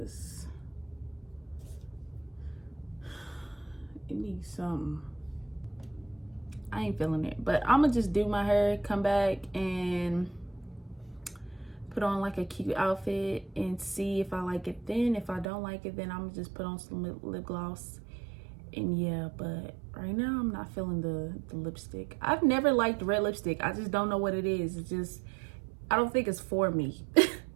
it needs some. I ain't feeling it, but I'm gonna just do my hair, come back and put on like a cute outfit and see if I like it. Then if I don't like it, then I'm gonna just put on some lip gloss. And yeah, but right now I'm not feeling the lipstick. I've never liked red lipstick. I just don't know what it is. It's just, I don't think it's for me.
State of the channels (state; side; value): drops out; left; at 15.5 s